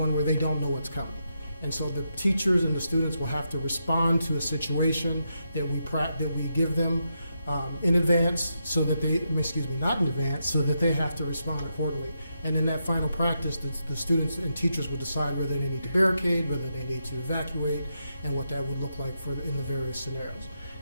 where they don't know what's coming. And so the teachers and the students will have to respond to a situation that we give them in advance, so that not in advance, so that they have to respond accordingly. And in that final practice, the students and teachers will decide whether they need to barricade, whether they need to evacuate, and what that would look like in the various scenarios.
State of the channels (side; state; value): both; inverted; correlation -0.83